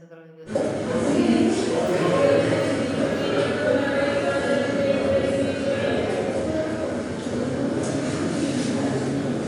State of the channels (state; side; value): identical; both; correlation 1.00